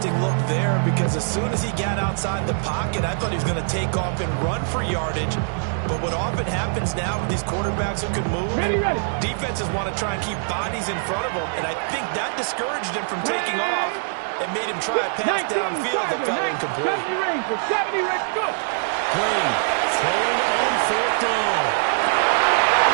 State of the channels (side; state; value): left; silent; 63 dB below the other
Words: look there because as soon as he got outside the pocket, I thought he was going to take off and run for yardage. But what often happens now with these quarterbacks who can move, defenses want to try and keep bodies in front of them, and I think that discouraged him from taking off and made him try a pass downfield that fell incomplete. 70 range, 70 range, go! Green throwing on 4th down.